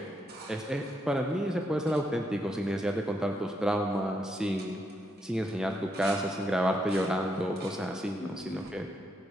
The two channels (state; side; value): normal; both; correlation 0.78